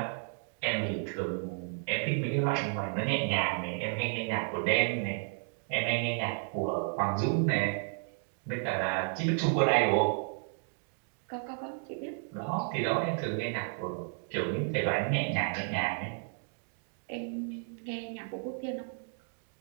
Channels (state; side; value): silent; left; 56 dB below the other